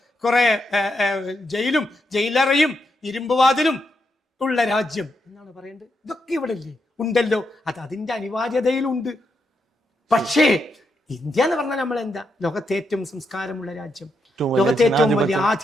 കുറെ ജയിലും ജയിലറയും ഇരുമ്പുവാതിലും ഉള്ള രാജ്യം എന്നാണ് പറയേണ്ടത്. ഇതൊക്കെ ഇവിടെ ഇല്ലേ? ഉണ്ടല്ലോ. അത് അതിന്റെ അനിവാര്യതയിലുണ്ട്. പക്ഷേ ഇന്ത്യ എന്ന് പറഞ്ഞാൽ നമ്മൾ എന്താ? ലോകത്തെ ഏറ്റവും സംസ്കാരമുള്ള രാജ്യം, ലോകത്തെ ഏറ്റവും വലിയ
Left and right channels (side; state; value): both; normal; correlation 0.82